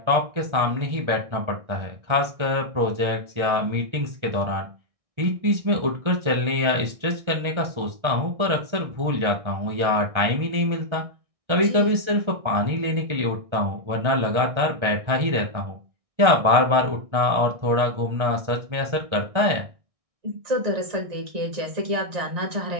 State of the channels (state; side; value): late; left; 1.6 ms